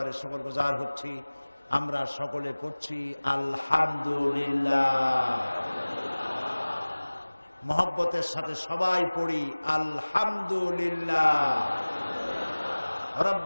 শুকরগুজার হচ্ছি। আমরা সকলে পড়ছি আলহামদুলিল্লাহ। মহব্বতের সাথে সবাই পড়ি আলহামদুলিল্লাহ।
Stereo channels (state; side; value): inverted; both; correlation -1.00